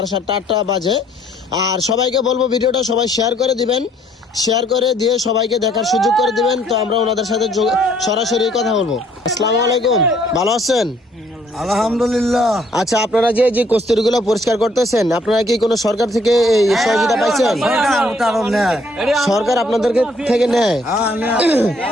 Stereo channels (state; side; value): normal; both; correlation 0.64